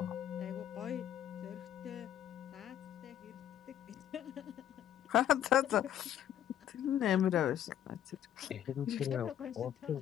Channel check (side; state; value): right; quieter; 10.8 dB